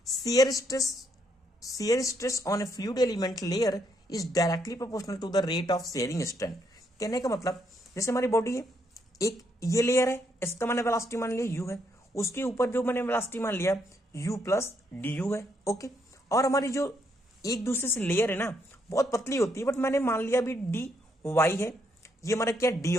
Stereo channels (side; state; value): both; normal; correlation 0.75